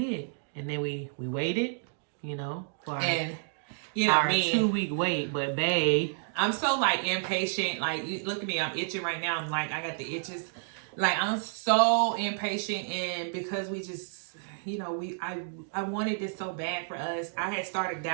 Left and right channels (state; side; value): silent; left; digital silence